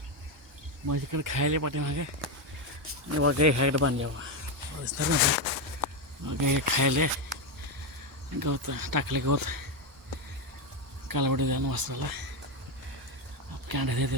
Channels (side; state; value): both; normal; correlation 0.09